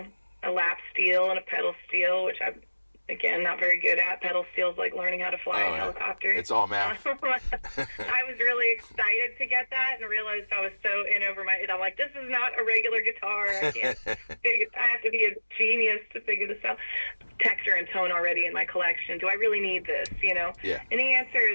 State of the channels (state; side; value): inverted; both; correlation -1.00